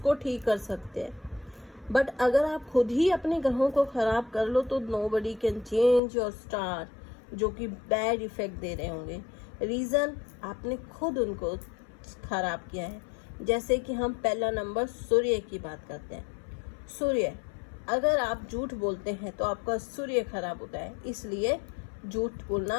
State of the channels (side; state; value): right; drops out; at 6.0 s